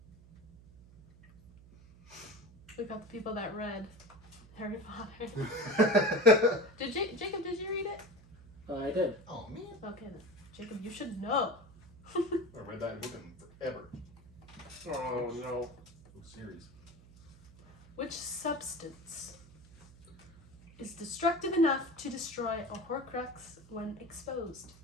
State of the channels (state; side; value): noise; right; hum, 22 dB below the sound